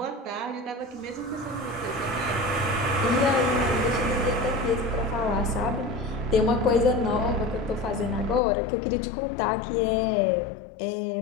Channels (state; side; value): drops out; right; at 8.4 s